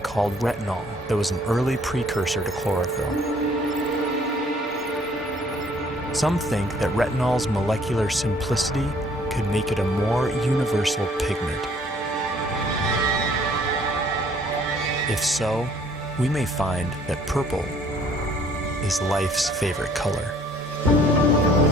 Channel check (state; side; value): normal; both; correlation 0.59